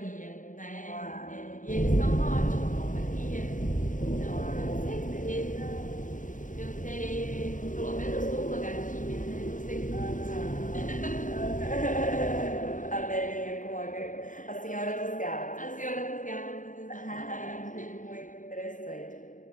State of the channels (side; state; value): right; late; 0.38 ms